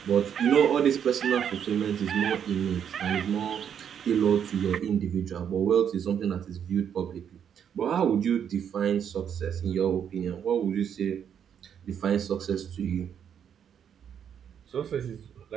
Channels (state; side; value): quieter; left; 8.4 dB